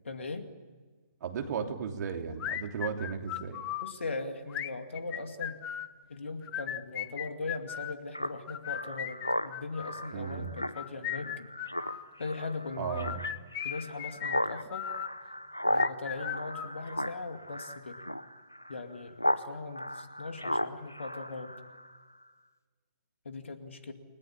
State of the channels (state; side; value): inverted; both; correlation -0.63